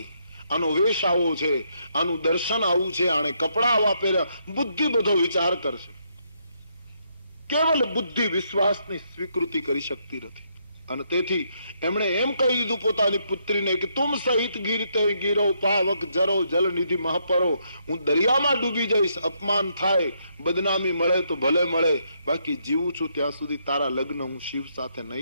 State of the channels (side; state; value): both; inverted; correlation -0.75